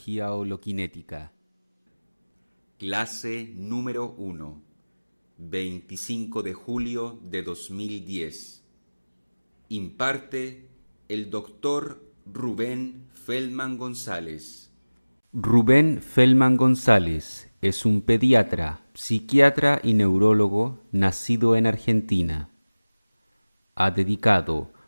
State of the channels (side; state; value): both; inverted; correlation -1.00